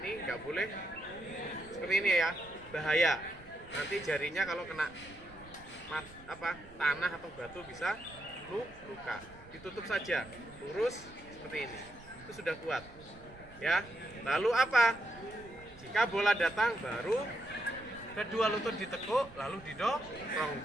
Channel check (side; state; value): right; noise; rumble, 21 dB below the sound